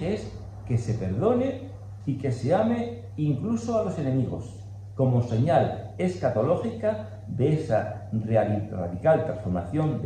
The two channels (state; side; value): identical; both; correlation 1.00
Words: es que se perdone y que se ame incluso a los enemigos, como señal escatológica de esa radical transformación